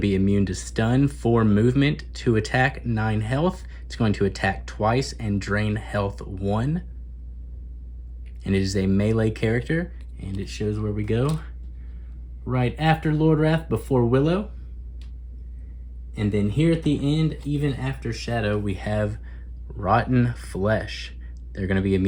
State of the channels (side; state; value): both; identical; correlation 1.00